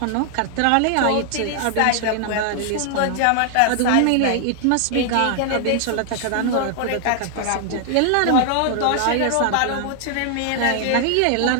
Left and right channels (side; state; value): both; different; correlation 0.00